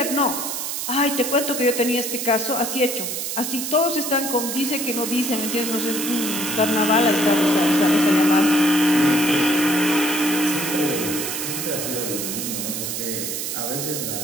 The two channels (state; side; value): noise; right; hiss, 4 dB below the sound